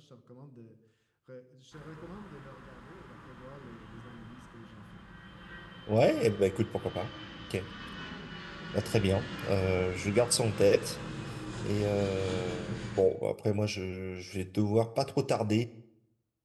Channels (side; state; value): both; identical; correlation 1.00